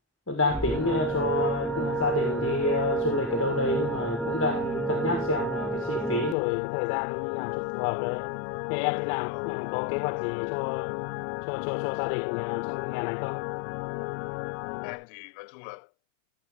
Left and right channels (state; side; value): drops out; right; at 6.4 s